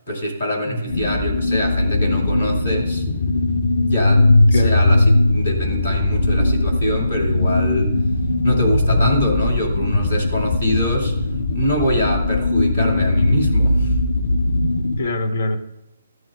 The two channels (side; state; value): both; inverted; correlation -0.83